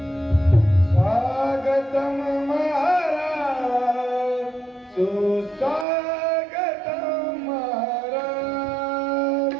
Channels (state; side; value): drops out; left; at 5.9 s